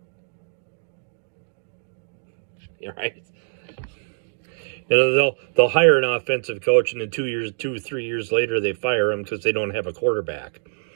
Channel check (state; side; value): silent; left; 62 dB below the other